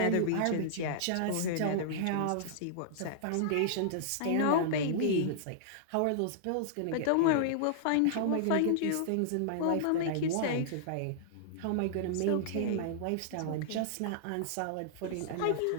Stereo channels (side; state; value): both; different; correlation -0.01